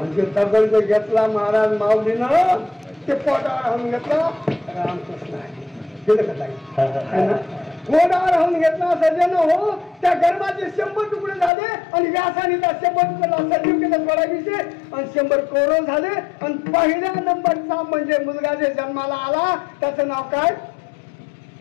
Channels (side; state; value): right; drops out; at 11.5 s